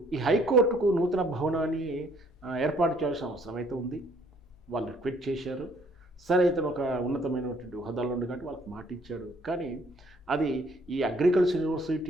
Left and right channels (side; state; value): both; normal; correlation 0.62